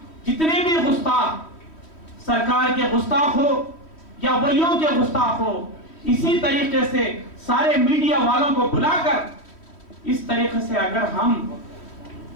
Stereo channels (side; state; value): right; late; 3.1 ms